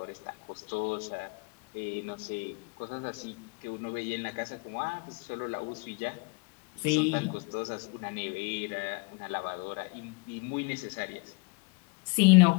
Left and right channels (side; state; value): right; quieter; 30.2 dB